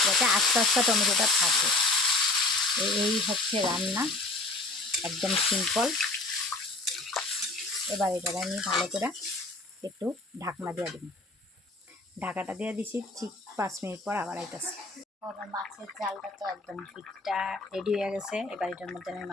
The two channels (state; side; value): quieter; right; 3.0 dB